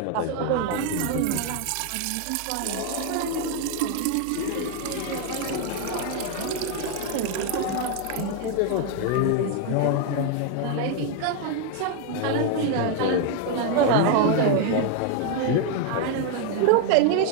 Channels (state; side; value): different; both; correlation 0.00